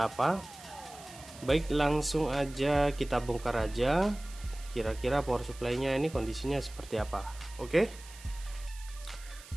apa. Baik, langsung aja kita bongkar aja kira-kira power supply-nya ini kondisinya seperti apa. Oke.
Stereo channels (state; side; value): noise; right; hiss, 18 dB below the sound